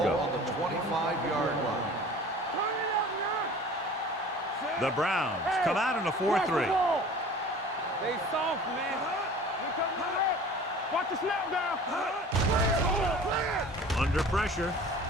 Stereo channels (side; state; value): both; normal; correlation 0.43